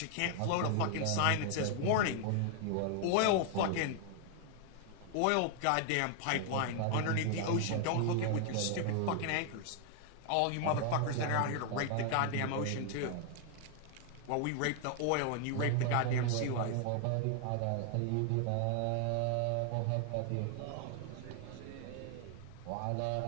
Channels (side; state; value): both; different; correlation 0.00